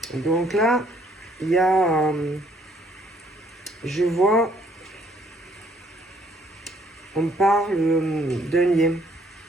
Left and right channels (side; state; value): both; normal; correlation 0.65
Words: Donc là, il y a... je vois... On parle d'un lien.